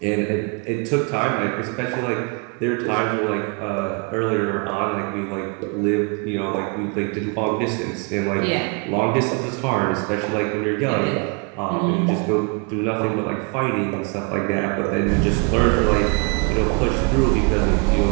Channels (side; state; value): left; quieter; 35.1 dB